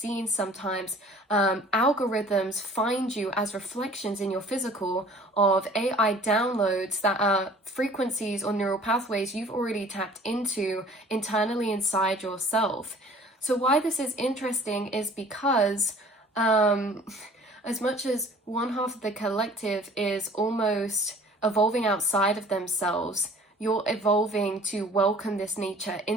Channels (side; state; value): both; normal; correlation 0.50